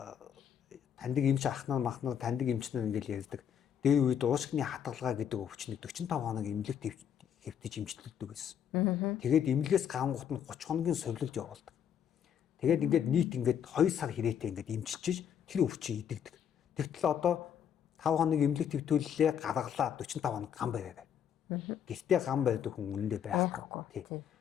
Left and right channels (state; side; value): quieter; right; 8.7 dB